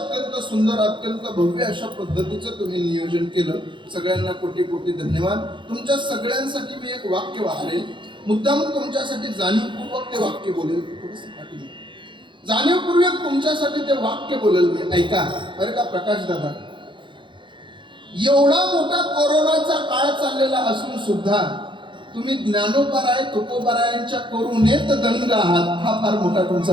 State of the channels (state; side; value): late; left; 0.23 ms